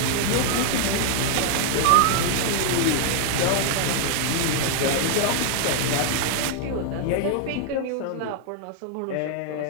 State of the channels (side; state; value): both; different; correlation 0.00